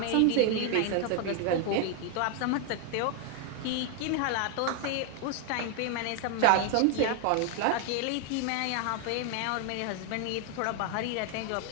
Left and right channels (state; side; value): different; both; correlation 0.00